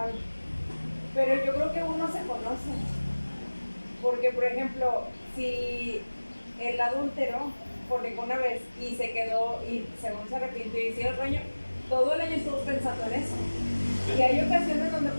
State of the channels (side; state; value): both; inverted; correlation -1.00